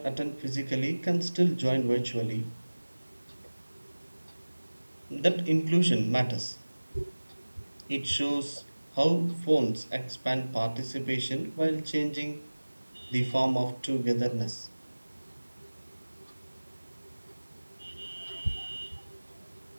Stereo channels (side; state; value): both; inverted; correlation -1.00